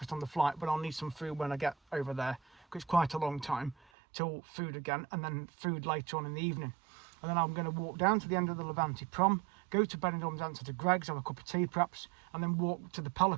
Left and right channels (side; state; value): left; drops out; at 3.8 s